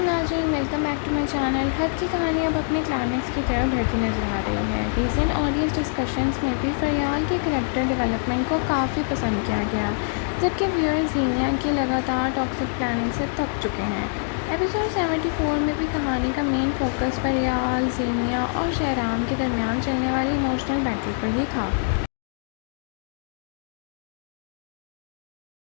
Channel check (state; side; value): silent; right; digital silence